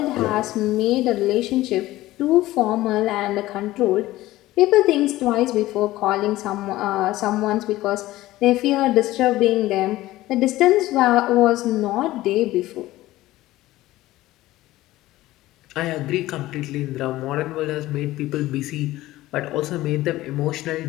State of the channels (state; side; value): quieter; right; 16.7 dB